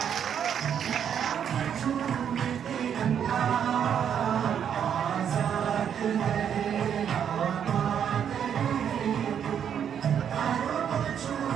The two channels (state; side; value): quieter; left; 8.5 dB